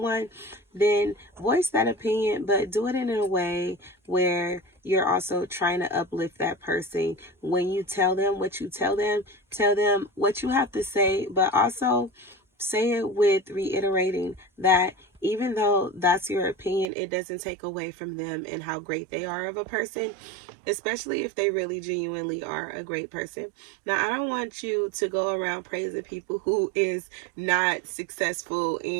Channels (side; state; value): left; drops out; at 16.9 s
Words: then voice that opinion, but do it in a way where you're also trying to uplift that person. When you tell them what you tell them what you have to say, but also say it with reiterating that even though that's your opinion, it doesn't take away from them and how great they are of a person, especially if they really genuinely are a great person. Now, I don't want you to go around praising people who is not successful